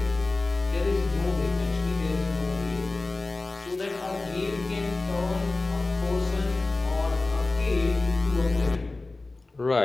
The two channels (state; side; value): quieter; right; 3.3 dB